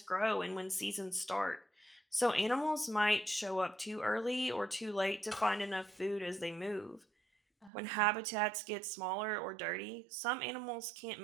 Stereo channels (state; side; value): drops out; left; at 7.7 s